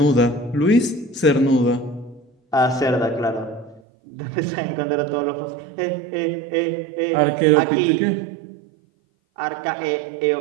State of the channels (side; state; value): left; drops out; at 3.8 s